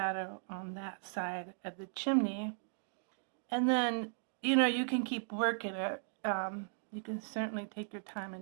on that side of the chimney. And then, you know, you can keep working it. You can certainly take your time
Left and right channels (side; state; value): left; silent; digital silence